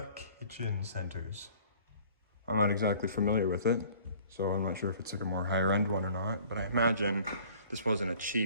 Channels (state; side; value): inverted; both; correlation -0.52